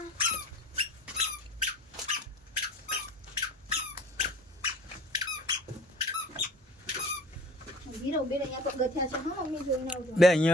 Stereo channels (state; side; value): normal; both; correlation 0.46